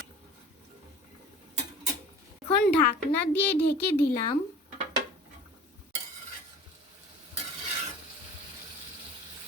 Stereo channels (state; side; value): normal; both; correlation 0.42